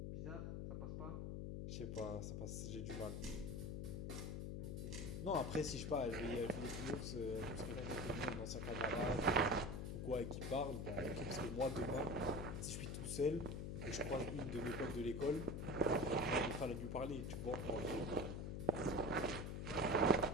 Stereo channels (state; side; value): noise; left; hum, 3 dB below the sound